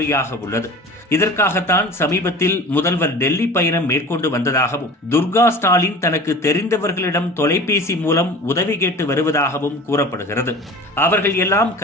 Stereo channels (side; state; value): both; normal; correlation 0.39